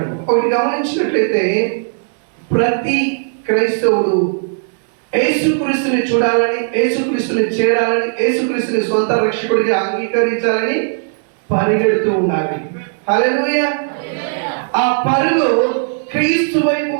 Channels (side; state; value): left; silent; digital silence